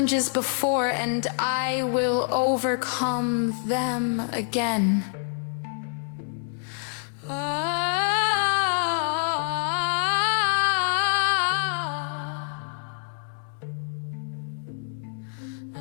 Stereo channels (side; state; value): right; silent; digital silence